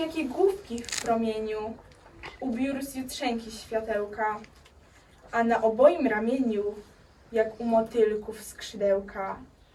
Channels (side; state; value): both; identical; correlation 1.00